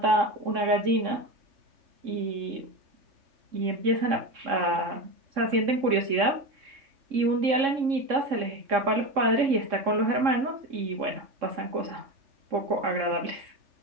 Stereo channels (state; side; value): late; left; 3.6 ms